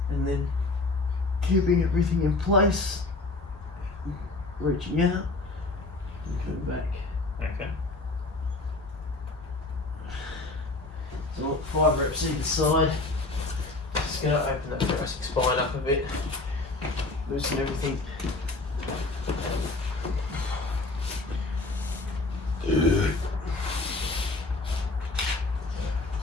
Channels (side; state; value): right; quieter; 3.2 dB